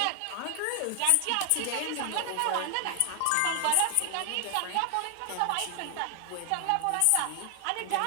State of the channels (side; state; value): both; different; correlation 0.00